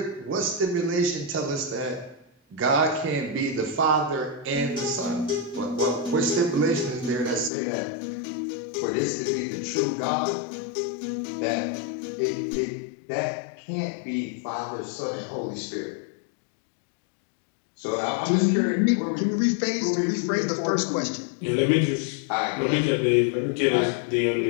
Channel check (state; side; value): drops out; right; at 7.5 s